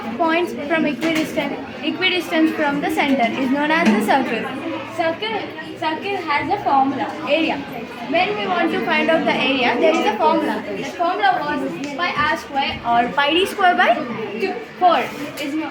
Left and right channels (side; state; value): both; identical; correlation 1.00